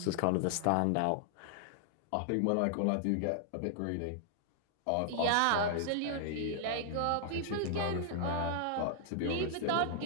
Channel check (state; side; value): different; both; correlation -0.01